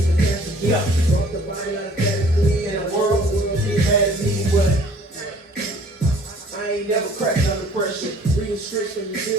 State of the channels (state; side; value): normal; both; correlation 0.54